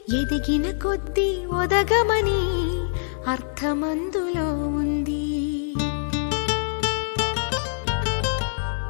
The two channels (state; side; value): silent; right; 62 dB below the other